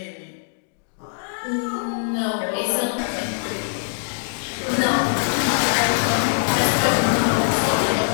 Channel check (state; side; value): silent; right; digital silence